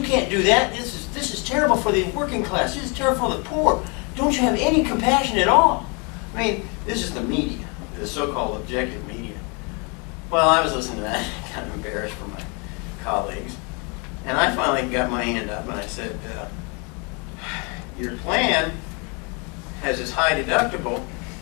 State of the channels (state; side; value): quieter; right; 32.5 dB